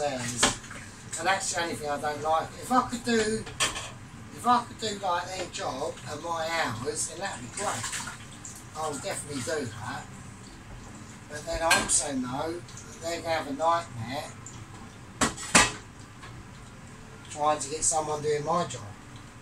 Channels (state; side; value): identical; both; correlation 1.00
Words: and that's the only thing I don't like. If I could do like their job and my hours, then that'd be great. I'll definitely do that. But then I also know that they're going to have a nightmare trying to get someone doing my job,